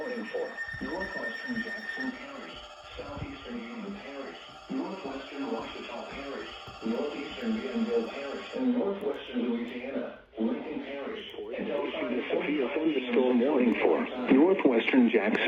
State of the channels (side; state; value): both; identical; correlation 1.00